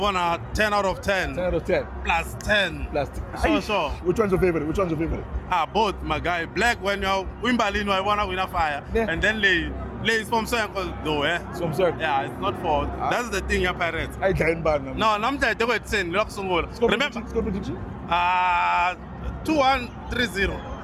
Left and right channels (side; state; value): both; identical; correlation 1.00